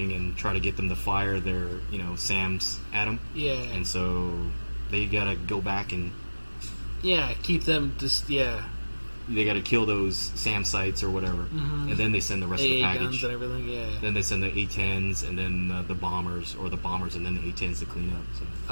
and try to get them to fire their SAMs at them. Yeah. And so they gotta go back and keep them just they gotta kill those SAM sites or whatever, and then they send the rest of the package. Guns and everything. Yeah. Then they send the A-10s and then the bombers, or the bombers and then the A-10s to clean up.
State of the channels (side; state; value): both; inverted; correlation -1.00